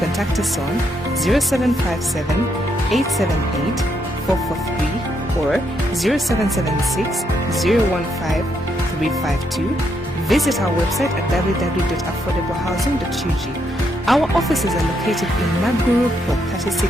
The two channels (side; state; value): both; normal; correlation 0.77